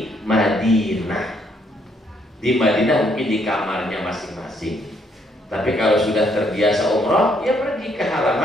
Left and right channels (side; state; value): both; normal; correlation 0.70